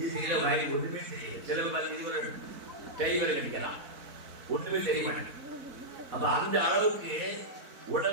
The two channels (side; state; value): left; late; 4.0 ms